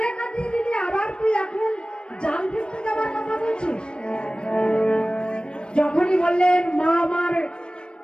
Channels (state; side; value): late; right; 0.054 ms